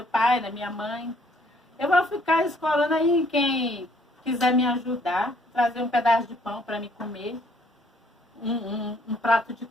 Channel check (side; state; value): both; normal; correlation 0.64